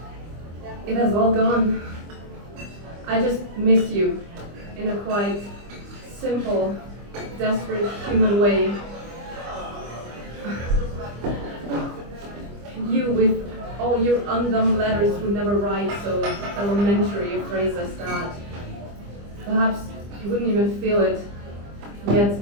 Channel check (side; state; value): left; late; 25 ms